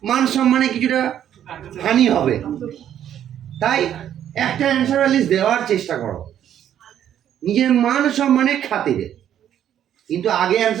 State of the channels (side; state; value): left; quieter; 10.3 dB